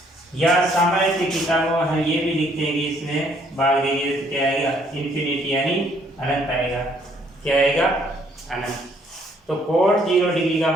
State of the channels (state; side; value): normal; both; correlation 0.65